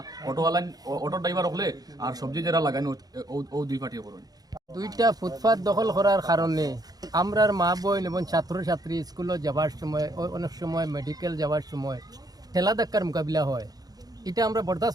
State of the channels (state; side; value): late; left; 0.19 ms